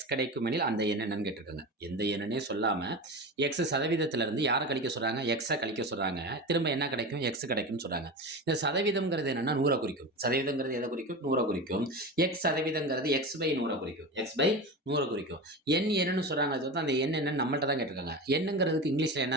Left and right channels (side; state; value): both; normal; correlation 0.26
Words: கிடைக்குமெனில் அந்த எண் என்னன்னு கேட்டிருக்காங்க. எந்த எண்ணுன்னே சொல்லாம எக்ஸ் சதவீதத்திலிருந்து யார கழிக்க சொல்றாங்க? எக்ஸ கழிக்க சொல்றாங்க. திரும்ப என்ன கிடைக்கும்? எக்ஸ் கிடைக்கும்னு சொல்றாங்க. இந்த சதவீதம்ங்கிறது என்னன்னா 100 குறிக்கும். சதவீதம்ங்கிறது எத குறிக்கும்? 100 குறிக்கும். எக்ஸ் சதவீதம்ங்கிறது எக்ஸ் பை 100 குறிக்கும். எக்ஸ் பை 100 குறிக்கும். எண் என்னன்னு சொல்றாங்க. அது அந்த எண் என்னன்னு நம்மள்ட்ட தான் கேட்டிருக்காங்க. எண்ணுங்கிறதுக்கு இங்கிலீஷ்ல